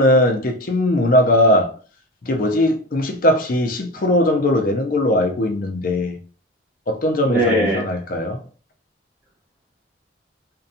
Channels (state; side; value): normal; both; correlation 0.27